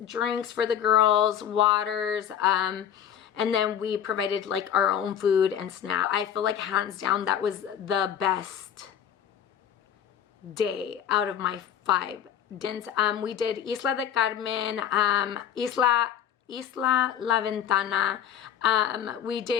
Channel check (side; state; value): right; quieter; 9.5 dB